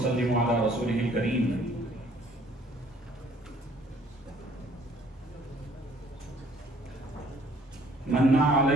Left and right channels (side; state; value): both; normal; correlation 0.59